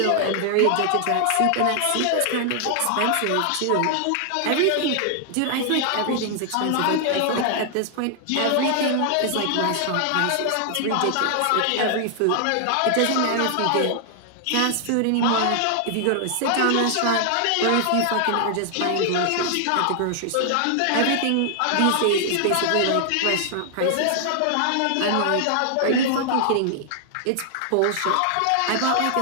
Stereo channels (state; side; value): different; both; correlation 0.00